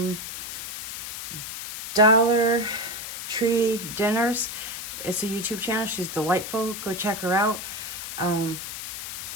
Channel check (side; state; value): left; noise; hiss, 7 dB below the sound